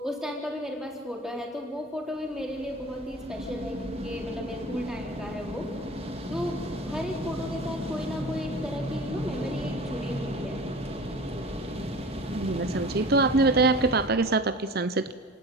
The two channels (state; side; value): normal; both; correlation 0.38